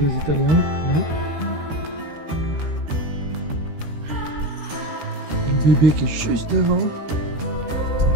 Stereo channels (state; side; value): late; left; 13 ms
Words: Italiens. Là. Le bébé qui est juste devant.